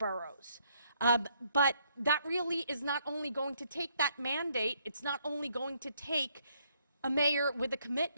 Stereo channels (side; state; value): both; inverted; correlation -0.71